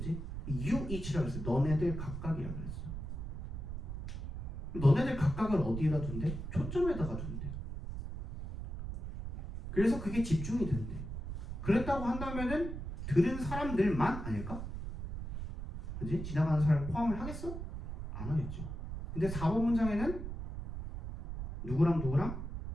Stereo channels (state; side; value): noise; right; rumble, 6 dB below the sound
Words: You each라고 했어. 너네들 각각이라고 그랬어. 너네들 각각을 어디에다 둔대? 초점에다가 둔대. 그래서 그게 집중이 된대. 그랬다고 한다면은 들은 사람들만 아닐까? 그지? 지나가는 사람 포함을 하겠어? 안 하겠죠. 근데 4번 문장에는 누구랑